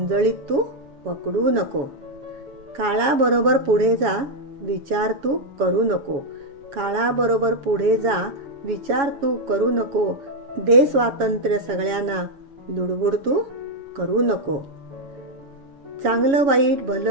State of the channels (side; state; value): left; late; 7.2 ms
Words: तू पकडू नको. काळाबरोबर पुढे जा, विचार तू करू नको. काळाबरोबर पुढे जा, विचार तू करू नको. दे स्वातंत्र्य सगळ्यांना, लुडबुड तू करू नको. चांगलं वाईट